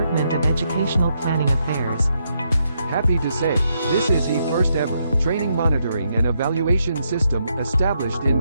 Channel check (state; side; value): inverted; both; correlation -0.79